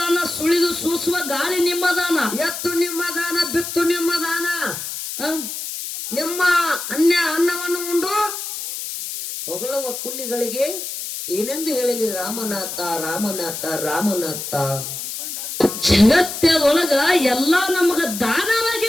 ಸುಳಿದು ಸೂಸುವ ಗಾಳಿ ನಿಮ್ಮ ದಾನ, ಎತ್ತು ನಿಮ್ಮ ದಾನ, ಬಿತ್ತು ನಿಮ್ಮ ದಾನ. ನಿಮ್ಮ ಅನ್ನವನ್ನು ಉಂಡು ಹೊಗಳುವ ಕುಂಡಿಗಳಿಗೆ ಏನೆಂದು ಹೇಳಲಿ ರಾಮನಾಥ ರಾಮನಾಥ ರಾಮನಾಥ. ಜಗತ್ತದೊಳಗ ಎಲ್ಲಾ ನಮಗ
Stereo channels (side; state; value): left; noise; hiss, 7 dB below the sound